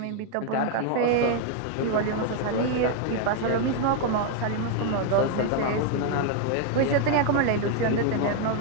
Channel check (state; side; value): different; both; correlation 0.00